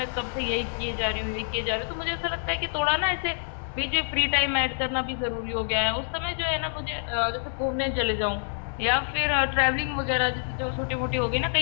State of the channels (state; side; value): silent; right; 60 dB below the other